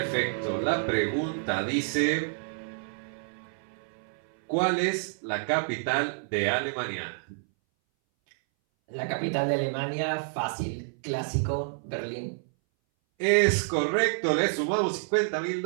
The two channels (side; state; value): left; silent; 59 dB below the other